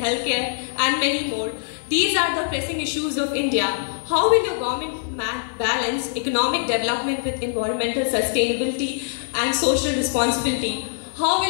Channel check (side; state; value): right; silent; digital silence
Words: healthcare and many more? These are the pressing issues of India. How will your government balance economic development with environmental sustainability and social responsibility? How